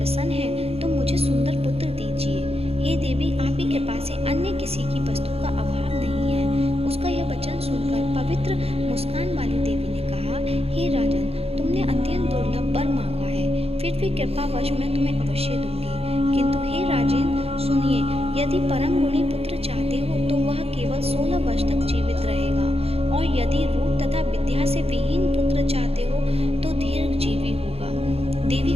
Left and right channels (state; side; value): late; left; 0.29 ms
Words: हैं तो मुझे सुंदर पुत्र दीजिए। हे देवी, आप ही कृपा से अन्य किसी की वस्तु का अभाव नहीं है। उसका यह वचन सुनकर पवित्र मुस्कान वाली देवी ने कहा, हे राजन, तुमने अत्यंत दुर्लभ वर मांगा है, फिर भी कृपावश मैं तुम्हें अवश्य दूंगी। किंतु हे राजन, सुनिए, यदि परम गुणी पुत्र चाहते हो तो वह केवल 16 वर्ष तक जीवित रहेगा, और यदि रूप तथा विद्या से विहीन पुत्र चाहते हो तो दीर्घजीवी होगा। देवी